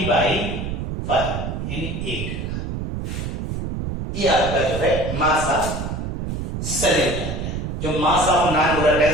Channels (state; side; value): noise; right; rumble, 4 dB below the sound